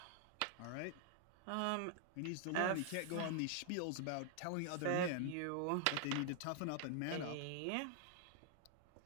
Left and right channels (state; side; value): different; both; correlation 0.00